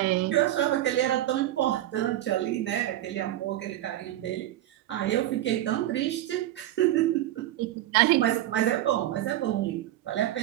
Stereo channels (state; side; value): quieter; left; 13.7 dB